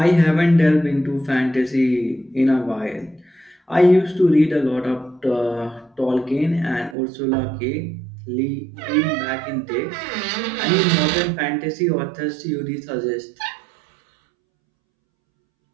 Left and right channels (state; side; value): drops out; left; at 7.0 s